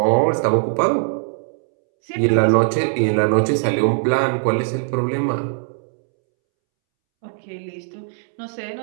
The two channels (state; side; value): silent; left; 66 dB below the other